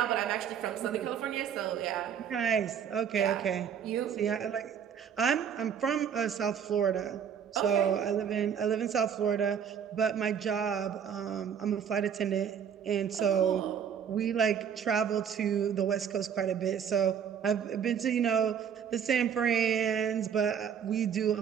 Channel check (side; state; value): left; quieter; 7.9 dB